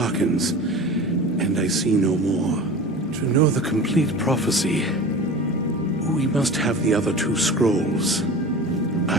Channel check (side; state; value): both; normal; correlation 0.36